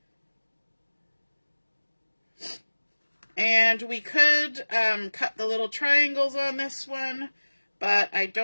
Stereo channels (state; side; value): inverted; both; correlation -1.00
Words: And we could cut the little triangles on this one, but I